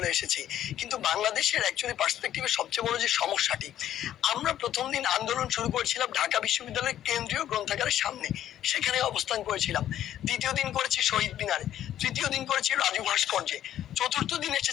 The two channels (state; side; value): quieter; right; 11.6 dB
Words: এসেছি। কিন্তু বাংলাদেশের অ্যাকচুয়ালি পার্সপেক্টিভে সবচেয়ে বড় যে সমস্যাটি, আমরা ১ম দিন আন্দোলন শুরু করেছিলাম ঢাকা বিশ্ববিদ্যালয়ের কেন্দ্রীয় গ্রন্থাগারের সামনে। সেখানে অবস্থান করেছিলাম। ২য় দিন করেছি শহীদ মিনারে। ৩য় দিন করেছি রাজু ভাস্কর্যে। ৪র্থ দিন